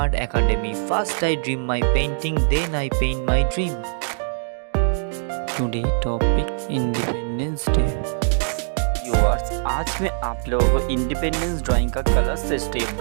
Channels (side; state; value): left; silent; digital silence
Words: Academy. First I dream my painting, then I paint my dream. Today topic Independence Day. Viewers, आज मैं आप लोगों को independence drawing का colour से step